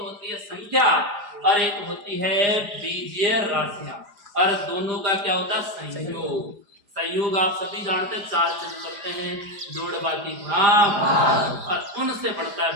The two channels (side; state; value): left; late; 5.0 ms